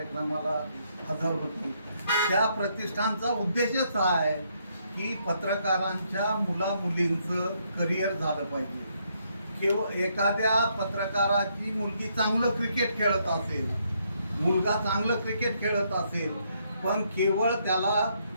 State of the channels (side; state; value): both; inverted; correlation -0.73